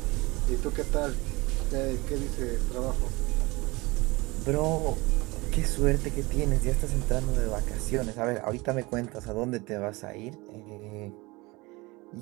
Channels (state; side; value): quieter; left; 23.4 dB